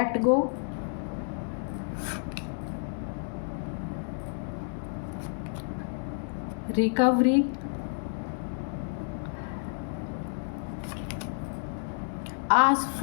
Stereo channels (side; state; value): right; silent; digital silence